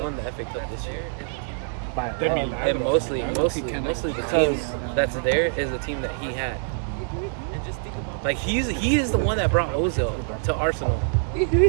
the FA Cup this year, By They're love. Milan. and mostly the team that's there is the team that he had. Like he is the one that brought Ozil to Arsenal,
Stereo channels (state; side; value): silent; left; digital silence